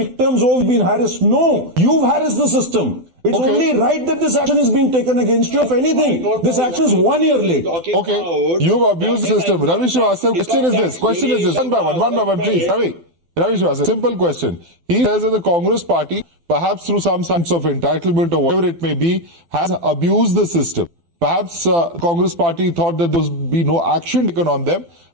oh, we've been harassed. No, you've harassed the system. It's only right that this action is being taken against you. If anything, this action is 1 year late. Okay, you've abused the system. Ravi Srivastava, question is this. One by one, please. Ravi Srivastava, simple question. He says that the Congress party, perhaps through some sense of entitlement or whatever it may be, has abused the system. Perhaps Congress party thought that there would be no action taken on them,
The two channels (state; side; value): late; left; 12 ms